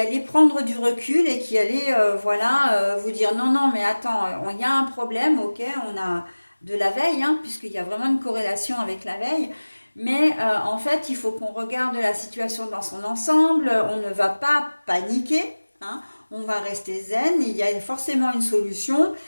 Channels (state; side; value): inverted; both; correlation -1.00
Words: allait prendre du recul et qui allait vous dire non, non, mais attends, il y a un problème, ok, on a de la veille, hein, puisqu'il y a vraiment une corrélation avec la veille, mais en fait, il faut qu'on regarde la situation dans son ensemble, on ne va pas paniquer, hein, on va rester zen, il y a forcément une solution,